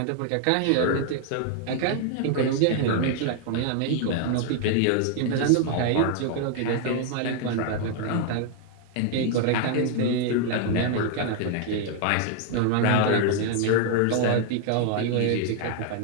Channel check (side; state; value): both; different; correlation 0.00